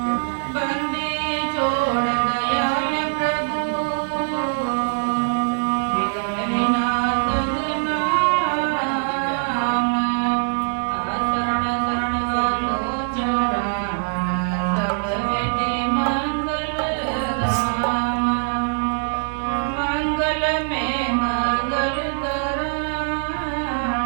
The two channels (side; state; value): left; silent; digital silence